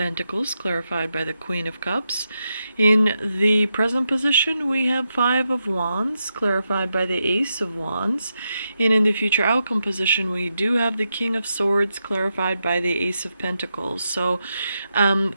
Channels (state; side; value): inverted; both; correlation -0.86